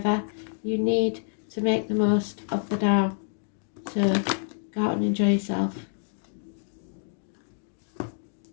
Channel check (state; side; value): silent; right; 60 dB below the other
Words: You need to make the most of the now. So go out and enjoy yourself.